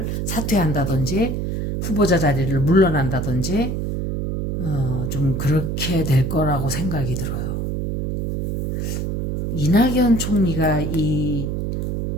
사퇴한다든지 후보자 자리를 물러난다든지 좀 그렇게 될 거라고 생각이 들어요. 이낙연 총리가 이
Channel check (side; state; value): right; noise; hum, 2 dB below the sound